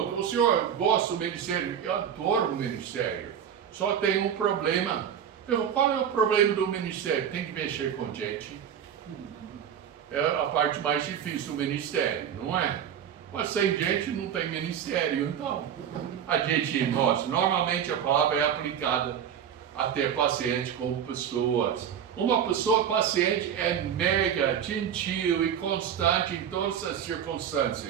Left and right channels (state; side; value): quieter; left; 8.8 dB